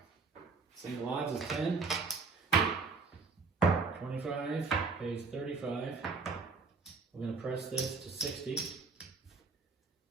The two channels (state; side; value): quieter; left; 4.4 dB